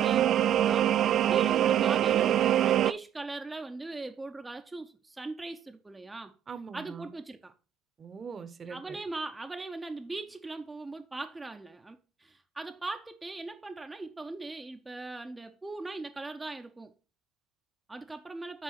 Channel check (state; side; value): quieter; left; 9.1 dB